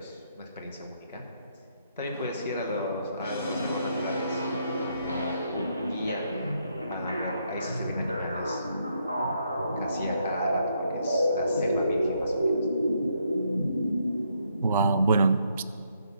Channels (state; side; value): inverted; both; correlation -0.75